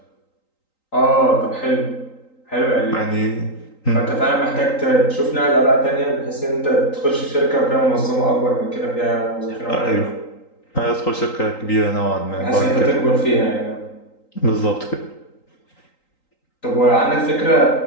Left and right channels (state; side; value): late; right; 3.9 ms